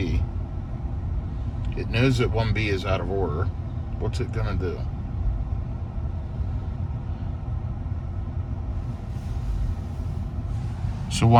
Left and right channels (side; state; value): both; identical; correlation 1.00